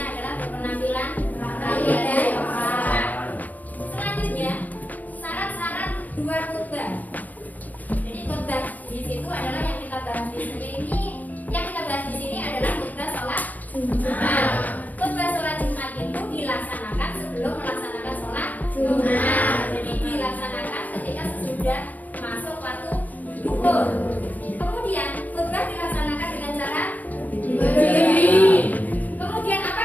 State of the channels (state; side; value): late; right; 0.080 ms